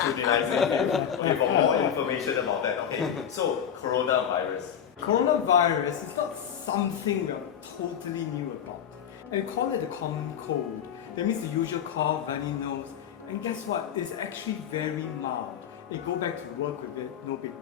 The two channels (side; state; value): right; quieter; 8.7 dB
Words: you, okay, for more information about that. Okay, so coronavirus. Coronavirus is not something we're totally new about. And we call it the common cold. That means the usual cough, runny nose. And guess what? It's actually very mild. You go back to work with it, no big